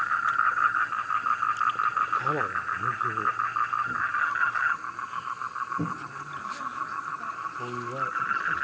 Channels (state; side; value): identical; both; correlation 1.00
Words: ခါလာ